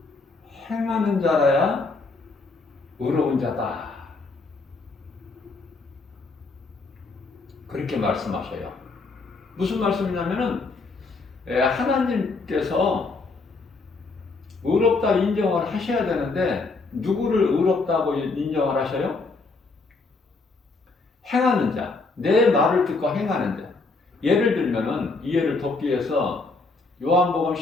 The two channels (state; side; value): quieter; right; 3.8 dB